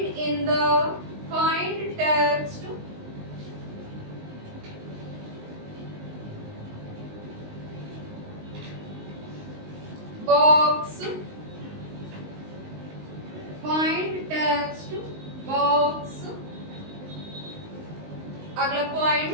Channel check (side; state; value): left; late; 19 ms